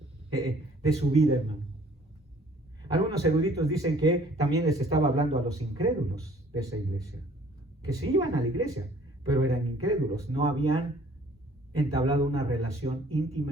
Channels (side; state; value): both; normal; correlation 0.56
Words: su vida, hermano. Algunos eruditos dicen que también les estaba hablando a los incrédulos de esa iglesia, que sí iban a la iglesia, pero eran incrédulos, no habían entablado una relación